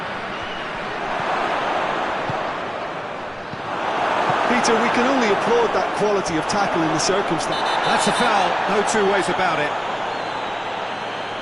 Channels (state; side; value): identical; both; correlation 1.00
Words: Peter, we can only applaud that quality of tackle in the circumstance. That's a foul, no two ways about it.